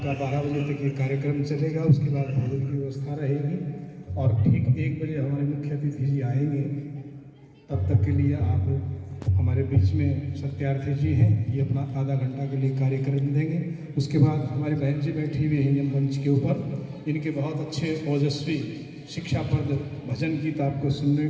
12 बजे तक ये कार्यक्रम चलेगा, उसके बाद भोजन की व्यवस्था रहेगी और ठीक 1 बजे हमारे मुख्य अतिथि जी आएंगे। तब तक के लिए आप हमारे बीच में सत्यार्थी जी हैं, ये अपना आधा घंटा के लिए कार्यक्रम देंगे। उसके बाद हमारे बहन जी बैठी हुई हैं मंच के ऊपर, इनके बहुत अच्छे ओजस्वी शिक्षाप्रद भजन गीत आपको सुनने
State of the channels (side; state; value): both; identical; correlation 1.00